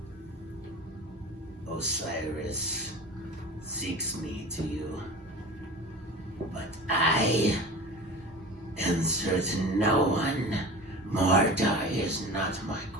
Osiris seeks me to you, but I answer to no one. Mordai is not my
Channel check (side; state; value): both; normal; correlation 0.35